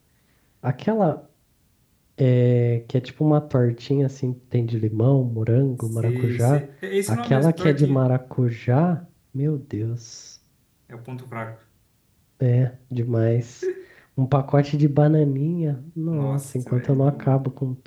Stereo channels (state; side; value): identical; both; correlation 1.00